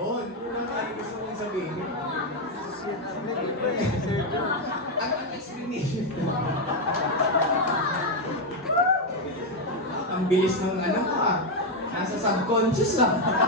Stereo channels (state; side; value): normal; both; correlation 0.05